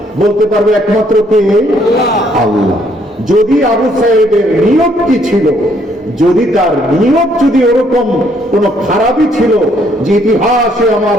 বলতে পারবে একমাত্র কে? আল্লাহ। যদি আবু সাইদের নিয়ত কি ছিল, যদি তার নিয়ত যদি ওরকম কোন খারাপই ছিল যে ইতিহাসে আমার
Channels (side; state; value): both; normal; correlation 0.68